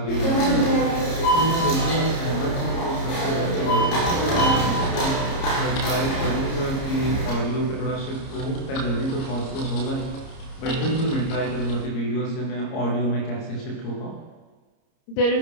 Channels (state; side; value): late; right; 30 ms